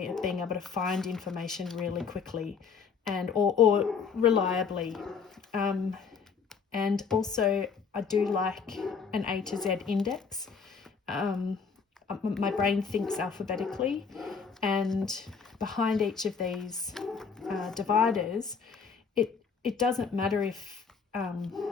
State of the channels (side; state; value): right; quieter; 5.7 dB